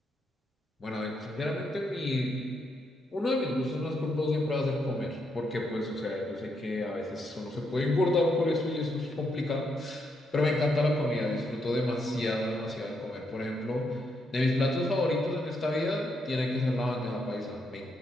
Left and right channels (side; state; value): both; normal; correlation 0.78